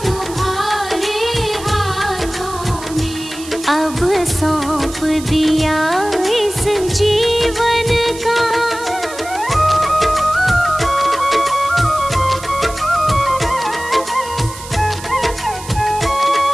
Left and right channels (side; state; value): right; noise; hiss, 14 dB below the sound